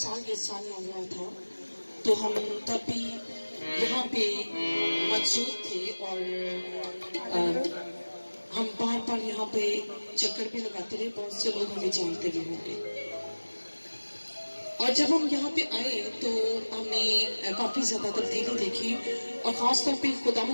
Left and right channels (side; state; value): both; inverted; correlation -1.00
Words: ये साल हुआ था तो हम तब भी यहाँ पे मौजूद थे और हम बार बार यहाँ पे चक्कर भी लगाते रहे। बहुत से लोग हमें जानते भी होंगे। और जब हम यहाँ पे आए तो हमने काफी ज्यादा तब्दीली देखी और खासतौर पे